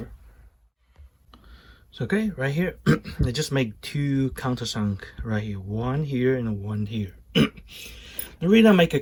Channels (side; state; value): both; identical; correlation 1.00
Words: So okay, right here, I just make two countersunk right here, one here and one here. The reason I make a